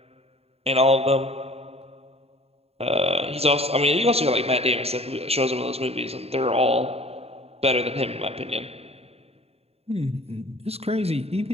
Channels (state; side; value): late; left; 0.29 ms